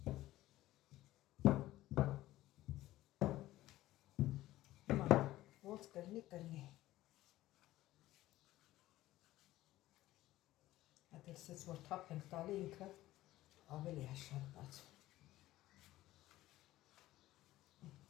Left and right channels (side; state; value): right; quieter; 15.8 dB